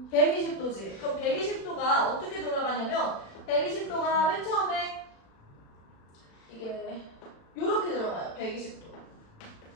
120도지. 그럼 120도가 어떻게 돌아가냐면 120도가 맨 처음에 이게 요렇게 들어가요. 120도.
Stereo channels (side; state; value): right; late; 36 ms